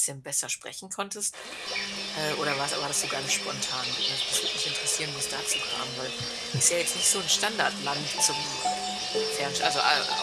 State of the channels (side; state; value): both; identical; correlation 1.00